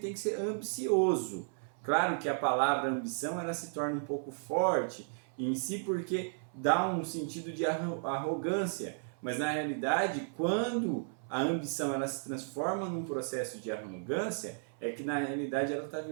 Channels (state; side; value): silent; left; 55 dB below the other